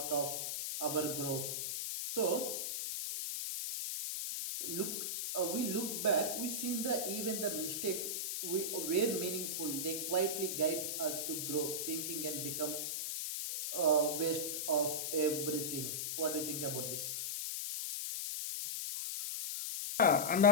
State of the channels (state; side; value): noise; left; hiss, 2 dB below the sound